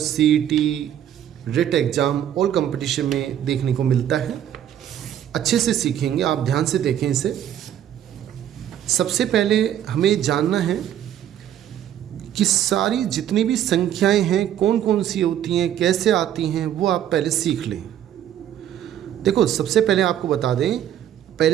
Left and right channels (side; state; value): left; quieter; 10.7 dB